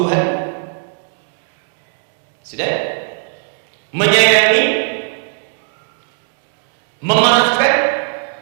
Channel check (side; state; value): left; silent; digital silence